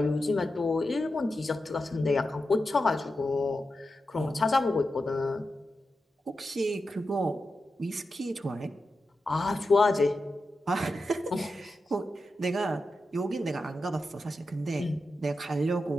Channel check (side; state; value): both; normal; correlation 0.90